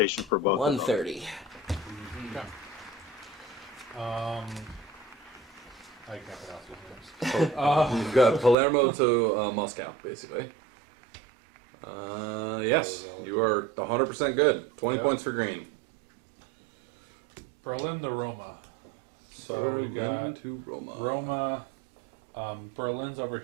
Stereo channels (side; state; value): left; drops out; at 8.6 s